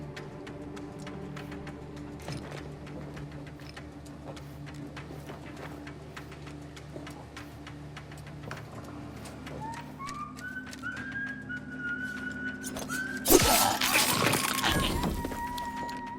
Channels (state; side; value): identical; both; correlation 1.00